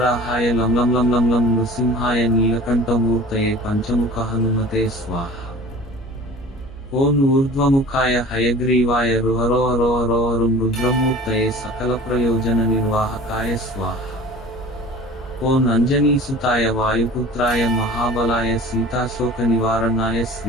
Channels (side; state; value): both; normal; correlation 0.43